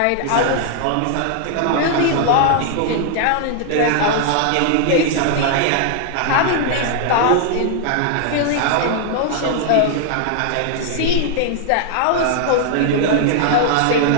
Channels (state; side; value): different; both; correlation 0.00